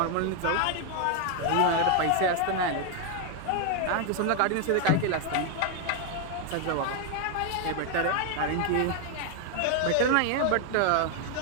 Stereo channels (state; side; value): different; both; correlation 0.00